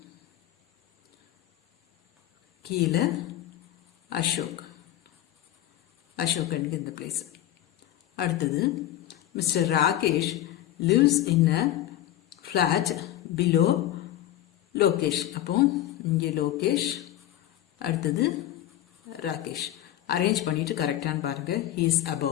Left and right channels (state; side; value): quieter; right; 13.2 dB